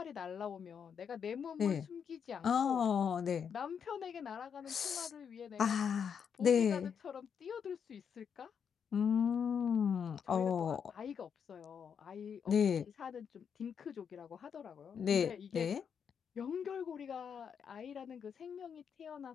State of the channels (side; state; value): right; quieter; 7.2 dB